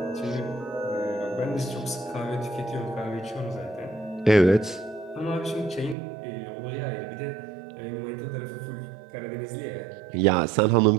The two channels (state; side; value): drops out; left; at 6.0 s